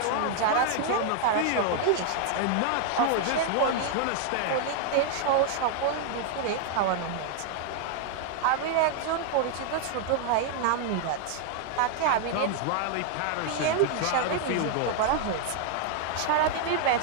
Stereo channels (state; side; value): different; both; correlation 0.00